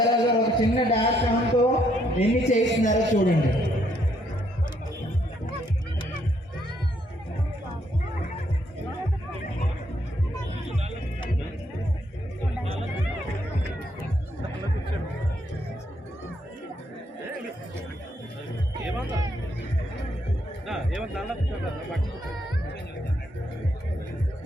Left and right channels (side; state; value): both; normal; correlation 0.72